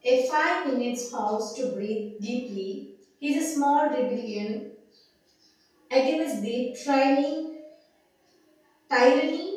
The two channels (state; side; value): identical; both; correlation 1.00